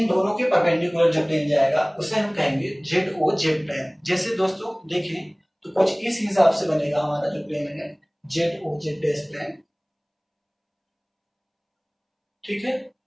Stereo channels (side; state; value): both; identical; correlation 1.00